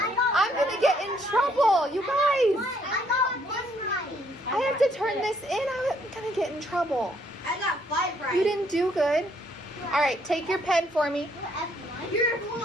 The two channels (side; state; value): both; normal; correlation 0.68